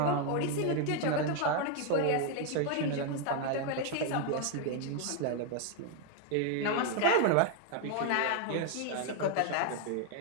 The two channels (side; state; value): both; different; correlation 0.01